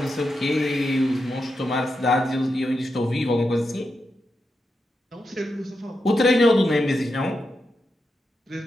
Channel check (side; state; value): both; normal; correlation 0.87